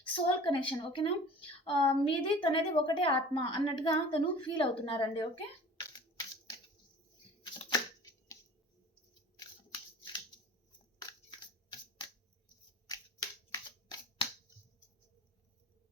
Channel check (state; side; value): normal; both; correlation 0.44